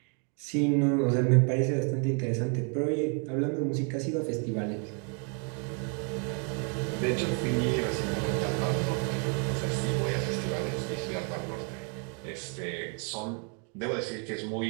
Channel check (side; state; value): left; quieter; 38.4 dB